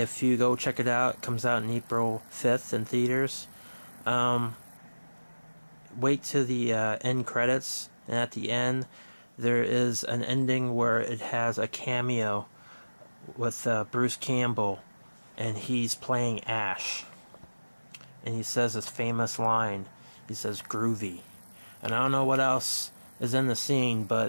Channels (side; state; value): both; inverted; correlation -1.00